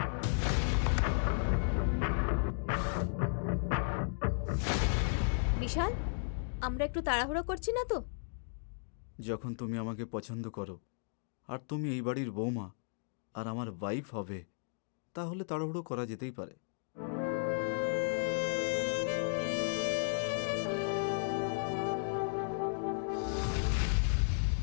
বিশাল, আমরা একটু তাড়াহুড়ো করছি না তো? যখন তুমি আমাকে পছন্দ করো আর তুমি এই বাড়ির বৌমা আর আমার ওয়াইফ হবে, তাহলে তাড়াহুড়ো করা যেতেই পারে।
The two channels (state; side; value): silent; right; digital silence